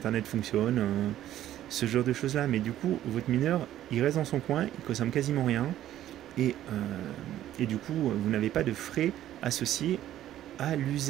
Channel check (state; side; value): quieter; left; 12.6 dB